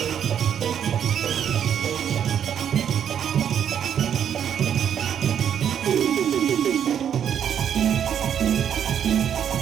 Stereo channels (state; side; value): quieter; left; 8.9 dB